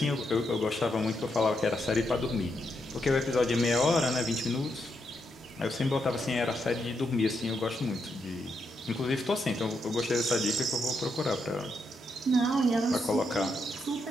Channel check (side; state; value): both; normal; correlation 0.81